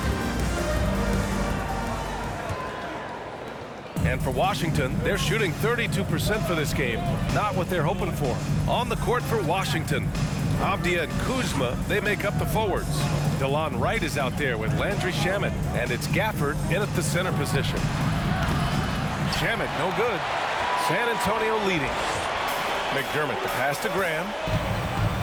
And for Washington, they're shooting 32% for this game. Not what they're hoping for. On the court for Washington, Avdia and Kuzma, they make up the forwards. DeLon Wright is out there with Landry Shamet, and it's Gafford in at the center position. Shamet, no good. San Antonio leading. McDermott, the pass to Graham.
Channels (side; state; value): both; identical; correlation 1.00